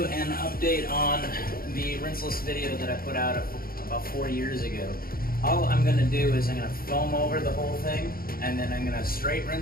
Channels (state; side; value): late; right; 0.43 ms